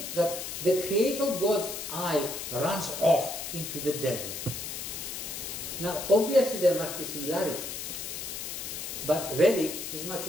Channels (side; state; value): left; noise; hiss, 6 dB below the sound